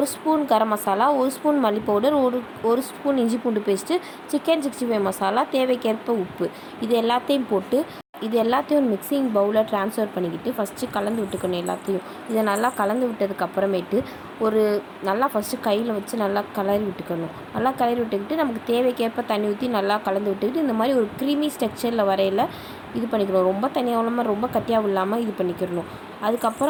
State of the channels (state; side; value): identical; both; correlation 1.00